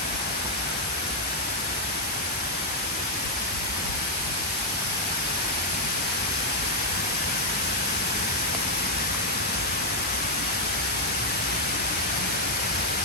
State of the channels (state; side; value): normal; both; correlation -0.02